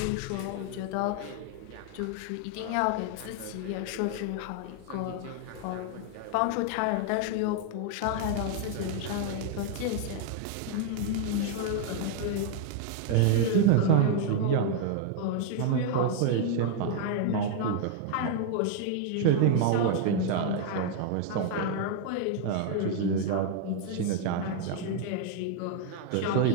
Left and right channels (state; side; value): different; both; correlation 0.00